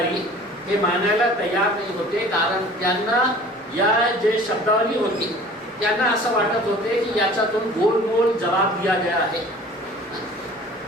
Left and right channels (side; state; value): both; normal; correlation 0.46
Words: हे मानायला तयार नाही होते, कारण त्यांना या जे शब्दावली होती त्यांना असं वाटत होते की याच्यातून गोलमोल जवाब दिया गया आहे,